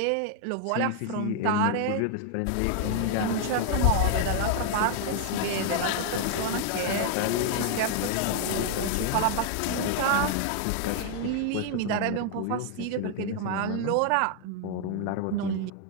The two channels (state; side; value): different; both; correlation 0.00